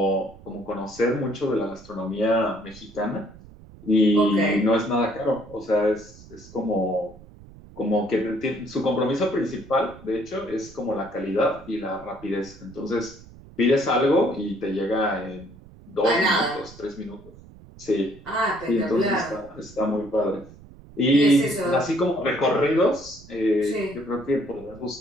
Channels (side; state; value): right; noise; rumble, 20 dB below the sound